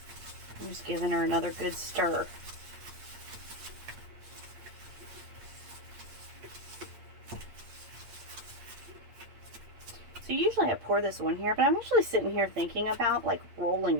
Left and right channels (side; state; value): left; late; 8.6 ms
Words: I'm just giving her another good stir. So usually I pour this on here, but I'm actually sitting here thinking about like rolling